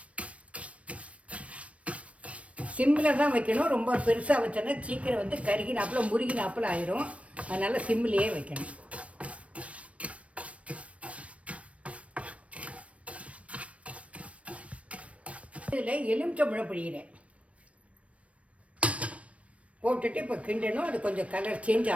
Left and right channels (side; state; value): left; late; 0.063 ms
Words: சிம்மில் தான் வைக்கணும். ரொம்ப பெருசாக வச்சோன்னா சீக்கிரம் வந்து கருகினாப்பில் முருகினாப்பில் ஆயிரும். அதனால் சிம்மிலேயே வைக்கணும். இதில் எலுமிச்சம்பழம் பிழிகிறேன். போட்டுட்டு இப்போ கிண்டணும். அது கொஞ்சம் கலர் சேஞ்ச்